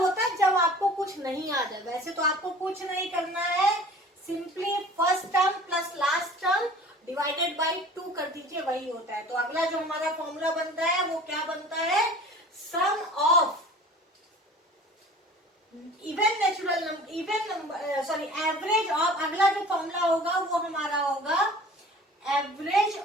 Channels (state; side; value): normal; both; correlation 0.45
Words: है जब आपको कुछ नहीं आ जाए, वैसे तो आपको कुछ नहीं करना है, simply first term plus last term divided by 2 कर दीजिए, वही होता है। तो अगला जो हमारा फॉर्मूला बनता है वो क्या बनता है, sum of even natural number, even number sorry average of, अगला जो फॉर्मूला होगा वो हमारा होगा average